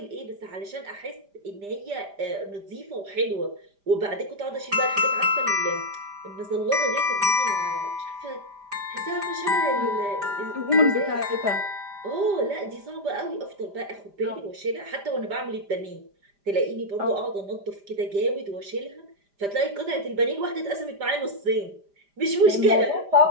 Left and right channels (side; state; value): left; late; 5.0 ms